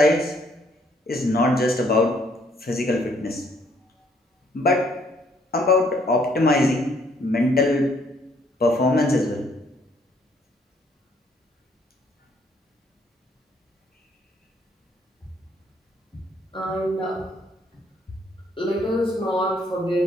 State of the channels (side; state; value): both; normal; correlation 0.67